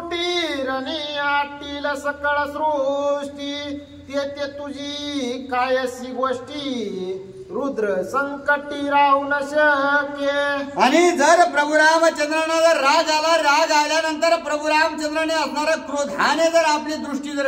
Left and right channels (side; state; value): both; identical; correlation 1.00